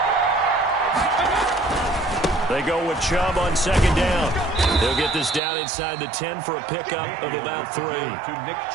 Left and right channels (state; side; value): drops out; left; at 5.4 s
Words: They go with Chubb on 2nd down. They'll get this down inside the 10 for a pickup of about 3. To Nick